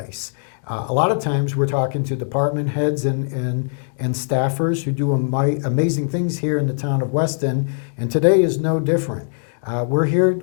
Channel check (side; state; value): right; silent; digital silence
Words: A lot of times we're talking to department heads and staffers who do amazing things here in the town of Weston, and today is no different. We're here